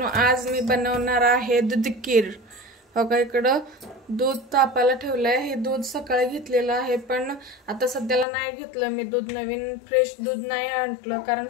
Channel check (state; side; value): drops out; right; at 8.2 s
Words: आज मी बनवणार आहे दूध खीर. हो का, इकडं दूध तापायला ठेवलंय. हे दूध सकाळी घेतलेलं आहे, पण आता सध्याला नाही घेतलं मी दूध. नवीन फ्रेश दूध नाही आणलं, कारण